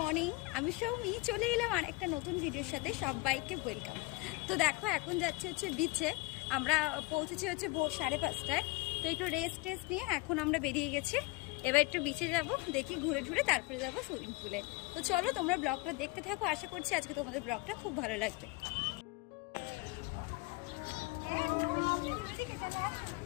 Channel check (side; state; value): right; quieter; 23.8 dB